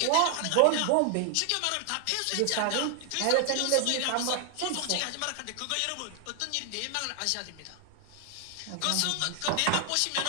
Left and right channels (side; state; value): both; different; correlation 0.00